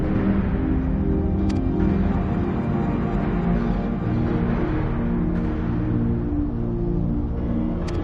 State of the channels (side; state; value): both; identical; correlation 1.00